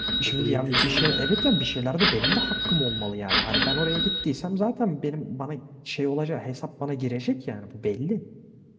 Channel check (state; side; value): identical; both; correlation 1.00